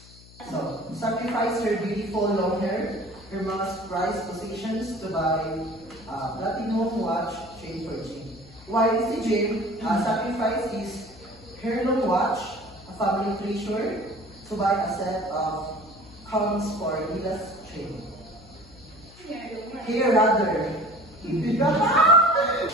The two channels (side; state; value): left; noise; hum, 22 dB below the sound